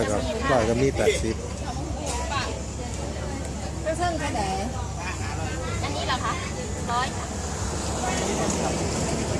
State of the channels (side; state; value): both; identical; correlation 1.00